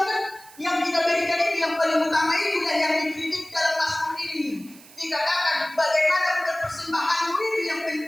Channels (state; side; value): noise; right; hiss, 22 dB below the sound